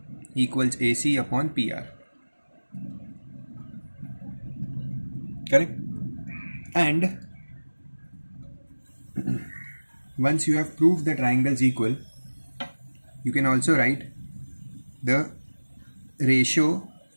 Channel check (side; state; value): both; inverted; correlation -1.00